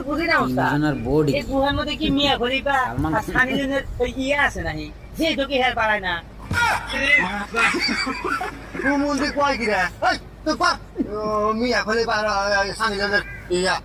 বুঝি না ওস্তাদ, এই গুহার মধ্যে কি মিয়া খলিফা আর সানি লিওনের ওই ইয়ে আছে নাকি, যে ঢুকে হের পারায় না। মন্দির কয় কিরা মিয়া খলে সানি লিওনের ইয়া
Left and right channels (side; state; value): both; identical; correlation 1.00